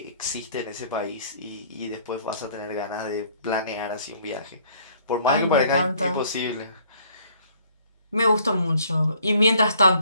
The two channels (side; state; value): both; inverted; correlation -0.60